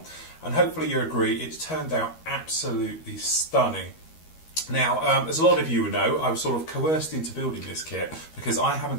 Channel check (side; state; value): right; late; 13 ms